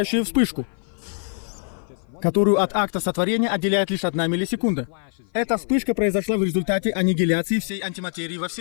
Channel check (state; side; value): silent; right; 56 dB below the other